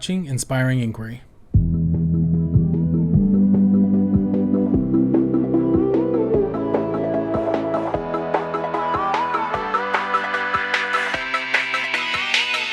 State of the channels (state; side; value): identical; both; correlation 1.00